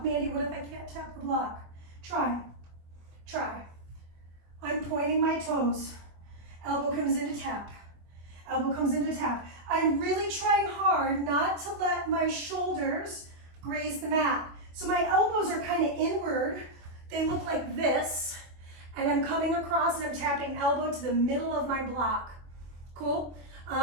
Mandy, what if I can't tap the block? Try. Try. I'm pointing my toes. Elbow comes in to tap. Elbow comes in to tap. I'm really trying hard not to let my shoulders graze the mat. So my elbows are kind of inward. They look like this. And I'm coming across and I'm tapping elbow to the middle of my block. Cool?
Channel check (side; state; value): left; late; 24 ms